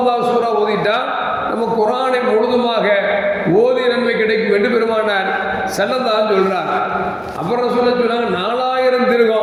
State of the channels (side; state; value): both; identical; correlation 1.00